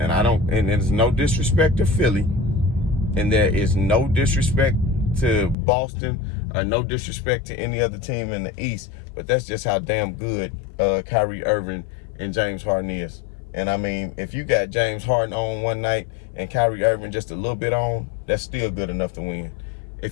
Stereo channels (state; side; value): drops out; right; at 5.6 s